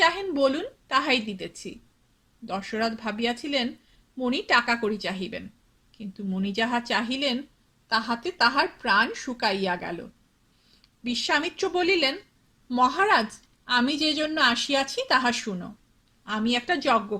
বলুন, তাহাই দিতেছি। দশরথ ভাবিয়াছিলেন মণি টাকা করি চাহিবেন, কিন্তু মণি যাহা চাহিলেন তাহাতে তাহার প্রাণ শুকাইয়া গেল। বিশ্বামিত্র বলিলেন, মহারাজ, আমি যে জন্য আসিয়াছি তাহা শুনো। আমি একটা যজ্ঞ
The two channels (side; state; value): both; identical; correlation 1.00